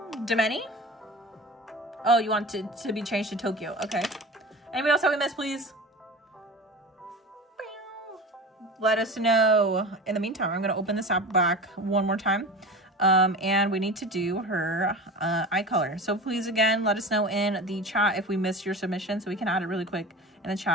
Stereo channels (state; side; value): normal; both; correlation 0.33